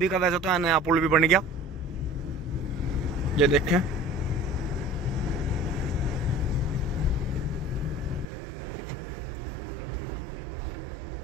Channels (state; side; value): drops out; left; at 8.2 s